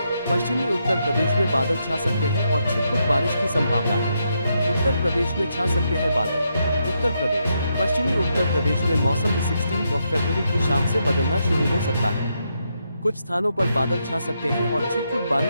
पश्चिमी उत्तर प्रदेश में बादल छा सकते हैं और छिटपुट बारिश की संभावना है। उत्तर प्रदेश में छा सकते हैं बादल। उत्तर प्रदेश, पश्चिमी उत्तर प्रदेश में मौसम 16 फरवरी की शाम से बदलना शुरू हो सकता है। कुछ स्थानों पर बादल छा सकते हैं और छिटपुट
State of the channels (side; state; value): both; inverted; correlation -0.81